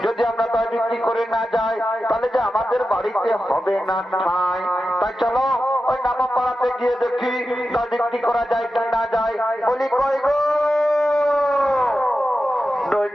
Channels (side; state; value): both; normal; correlation 0.91